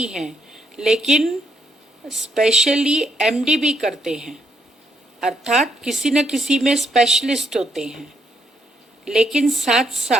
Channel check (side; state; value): both; normal; correlation 0.75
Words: हैं, लेकिन स्पेशली MD भी करते हैं, अर्थात किसी न किसी में स्पेशलिस्ट होते हैं। लेकिन साथ